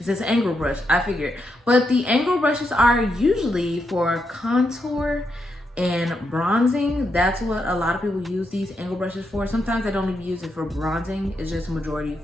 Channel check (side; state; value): both; normal; correlation 0.82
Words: says angle brush, I figured. But the angle brushes are usually for contour and bronzing. That's what a lot of people use these angle brushes for. Sometimes I don't even use it for bronzing. It's just majority